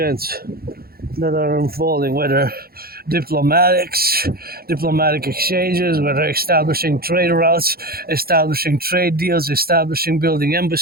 that are unfolding, whether diplomatic exchanges, whether establishing trade routes, establishing trade deals, building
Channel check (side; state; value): left; late; 0.44 ms